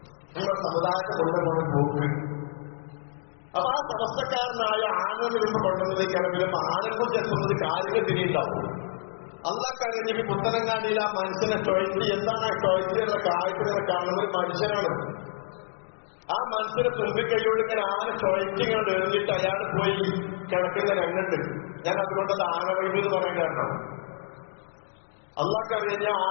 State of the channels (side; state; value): right; silent; digital silence